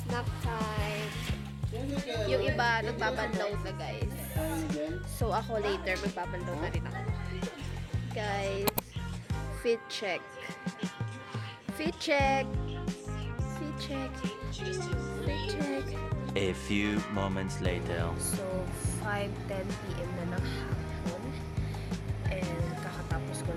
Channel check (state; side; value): identical; both; correlation 1.00